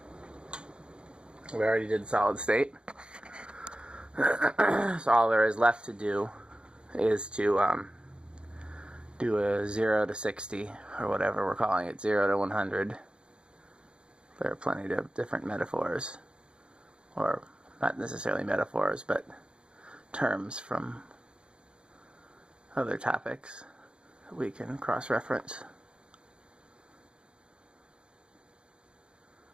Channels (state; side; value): late; left; 0.054 ms